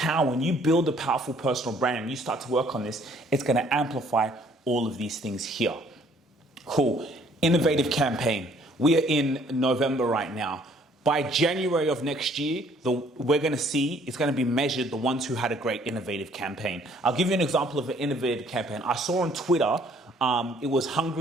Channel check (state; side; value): normal; both; correlation 0.61